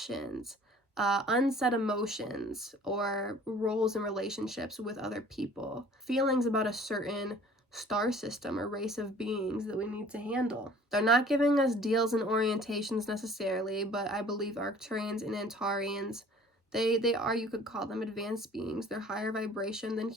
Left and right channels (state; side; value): normal; both; correlation 0.50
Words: unsaid emotions or roles in relationships with other people, feelings about a certain star system or race of beings that we need to handle. They're not giving us deals and orientations necessarily, but I believe Arcturians and Antarians, they are, you could call them advanced beings. They're higher vibration than